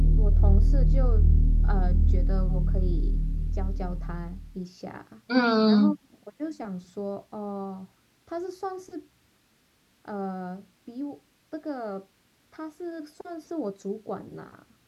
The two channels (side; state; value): both; identical; correlation 1.00